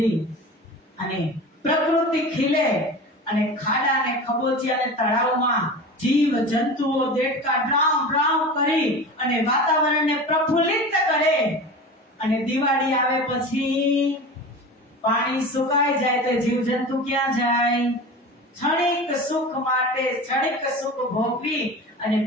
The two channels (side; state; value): both; normal; correlation 0.32